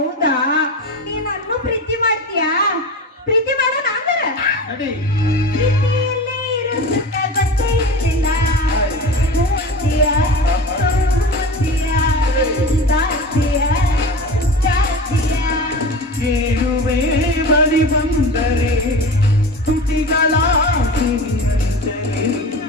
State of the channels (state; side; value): normal; both; correlation 0.31